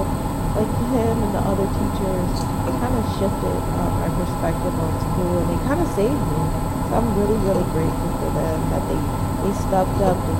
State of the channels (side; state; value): both; identical; correlation 1.00